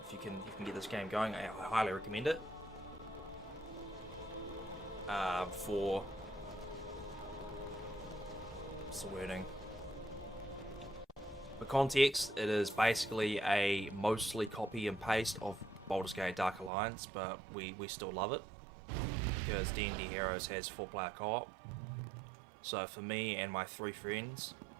if you can get this game going, I highly recommend it. For what's the wording? For context, it is basically a mostly copy and paste of Baldur's Gate Dark Alliance, but we still love it because D&D Heroes has 4-player co-op. So for me and my 3 friends,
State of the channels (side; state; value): left; drops out; at 16.7 s